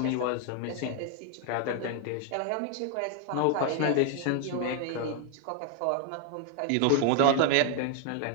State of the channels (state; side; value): different; both; correlation 0.00